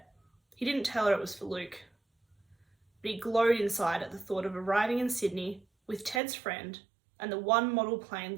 he didn't tell her it was for Luke. But he glowed inside at the thought of arriving in Sydney with Ted's friend and the one model plane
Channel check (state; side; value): drops out; left; at 6.2 s